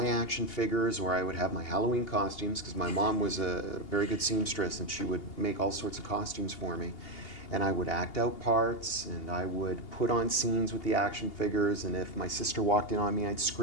action figures, or I would have my Halloween costumes because my mom was a very good seamstress and she would make all sorts of costumes for me. And I would act out parts, and I would put on scenes with the action figures, and if my sister walked in on me, I'd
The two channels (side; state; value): right; late; 2.8 ms